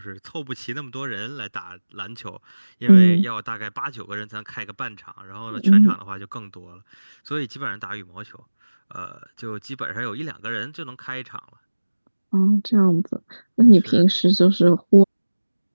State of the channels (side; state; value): both; inverted; correlation -1.00